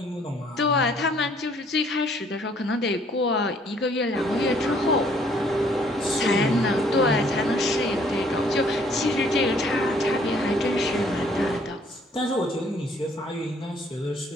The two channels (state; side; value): normal; both; correlation 0.62